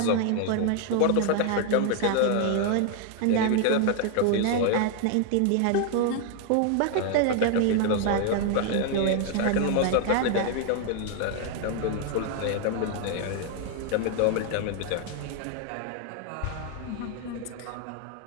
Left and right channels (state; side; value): different; both; correlation 0.00